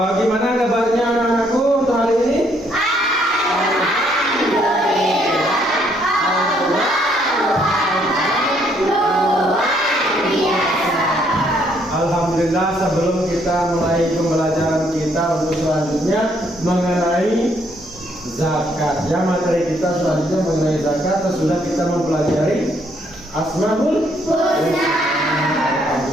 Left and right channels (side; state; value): right; noise; hum, 28 dB below the sound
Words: gimana kabarnya anak-anakku untuk hari ini? Alhamdulillah, sebelum kita mulai pembelajaran kita untuk selanjutnya mengenai zakat, ya, materi kita selanjutnya mengenai zakat, sudah kita mempelajari Asmaul Husna.